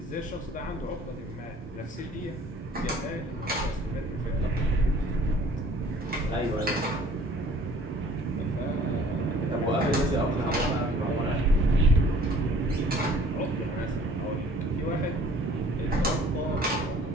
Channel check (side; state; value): both; normal; correlation 0.53